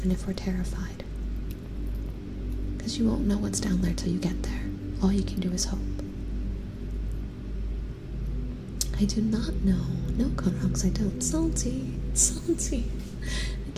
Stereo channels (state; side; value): identical; both; correlation 1.00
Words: if we're terrified. Because you won't know what's down there till you get there. All you can do is hope. I do not know. No, Conrox, I don't. Salty.